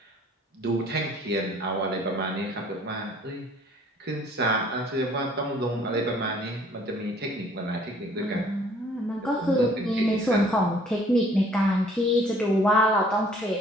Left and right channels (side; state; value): both; normal; correlation 0.57